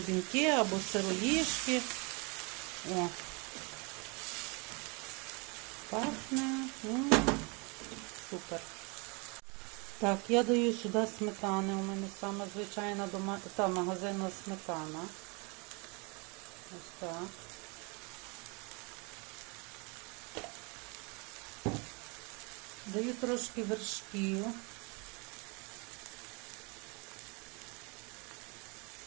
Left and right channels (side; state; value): left; quieter; 30.5 dB